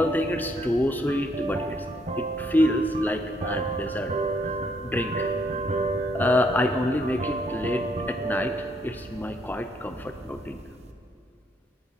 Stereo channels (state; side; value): normal; both; correlation 0.71